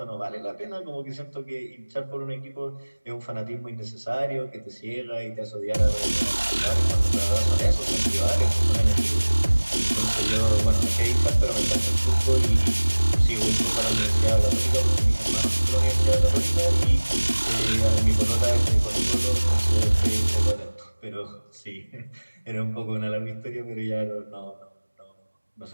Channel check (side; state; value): both; inverted; correlation -1.00